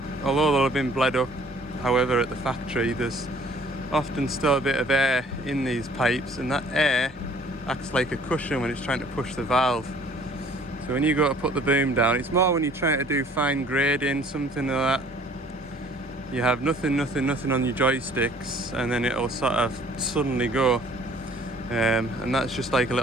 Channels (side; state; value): both; normal; correlation 0.55